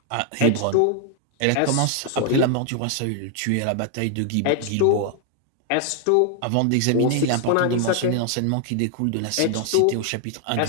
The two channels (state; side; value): different; both; correlation 0.00